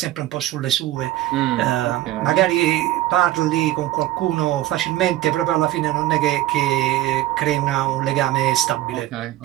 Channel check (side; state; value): left; quieter; 15.0 dB